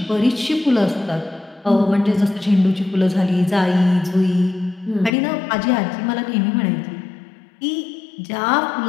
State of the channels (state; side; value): drops out; right; at 5.1 s